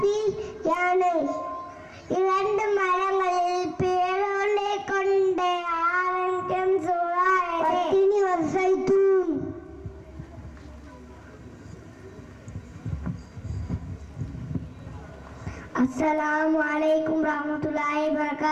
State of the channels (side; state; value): both; identical; correlation 1.00